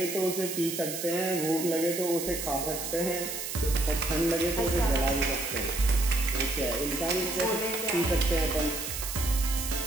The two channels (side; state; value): right; noise; hiss, 5 dB below the sound